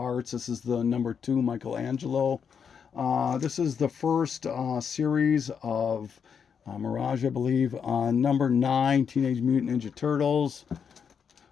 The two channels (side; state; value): right; quieter; 6.9 dB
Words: This is the number 2 Michelangelo. This is the first series of Mirage, I believe. Number 9, Teenage Mutant Ninja Turtles.